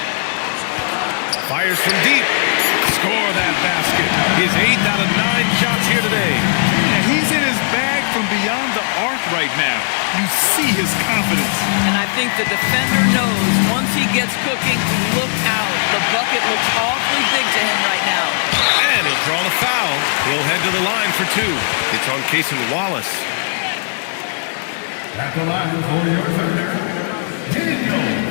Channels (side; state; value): right; silent; digital silence